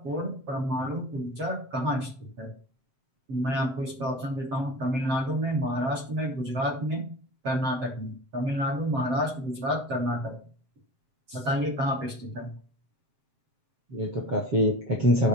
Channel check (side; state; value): left; late; 7.6 ms